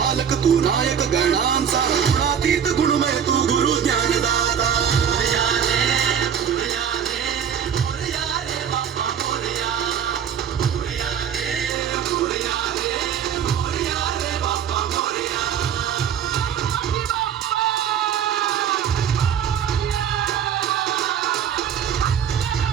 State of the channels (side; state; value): left; quieter; 8.4 dB